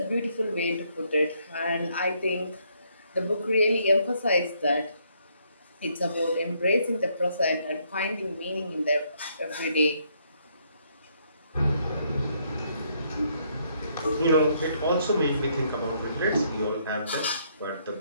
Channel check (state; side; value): inverted; both; correlation -0.71